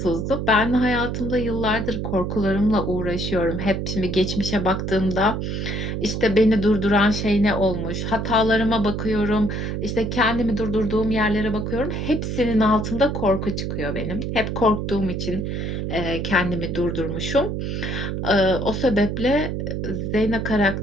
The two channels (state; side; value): noise; right; hum, 3 dB below the sound